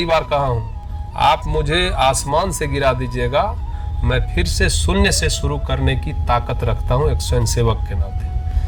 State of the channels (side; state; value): both; identical; correlation 1.00